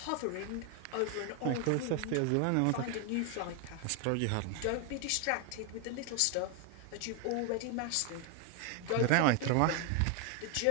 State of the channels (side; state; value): both; different; correlation 0.01